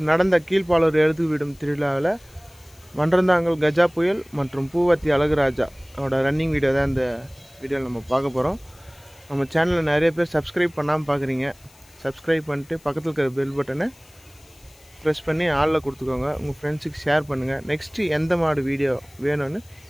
நடந்த கீழ்பாலூர் எழுது விடும் திருவிழாவில் மன்றந்தாங்கல் கஜா புயல் மற்றும் பூவத்தி அழகுராஜா அவரோட ரன்னிங் வீடியோ தான் இந்த வீடியோவில் நம்ம பார்க்க போகிறோம். நம்ம சேனலில் நிறைய பேர் சப்ஸ்கிரைப் பண்ணாமல் பார்க்குறீங்க. சப்ஸ்கிரைப் பண்ணிட்டு பக்கத்தில் இருக்கிற பெல் பட்டனை ப்ரெஸ் பண்ணி ஆளில் கொடுத்துக்கோங்க. உங்கள் ஃப்ரெண்ட்ஸுக்கு ஷேர் பண்ணுங்கள். நெக்ஸ்ட்டு எந்த மாடு வீடியோ வேணும்னு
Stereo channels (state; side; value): noise; left; hiss, 27 dB below the sound